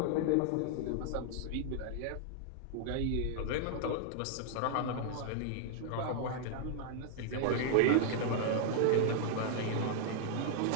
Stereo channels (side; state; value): both; different; correlation 0.00